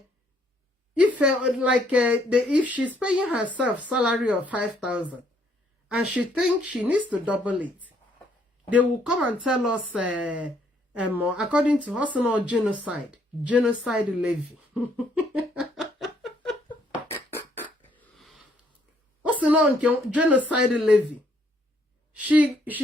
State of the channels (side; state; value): both; normal; correlation 0.68